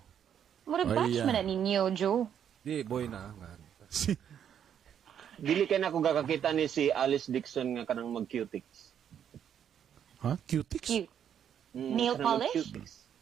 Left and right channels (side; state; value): left; quieter; 8.9 dB